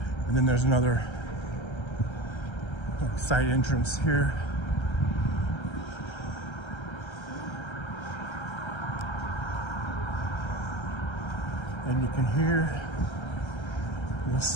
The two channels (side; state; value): right; late; 1.3 ms